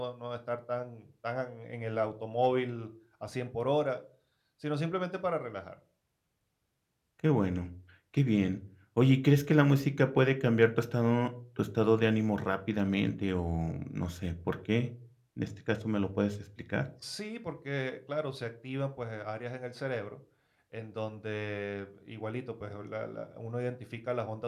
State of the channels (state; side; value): identical; both; correlation 1.00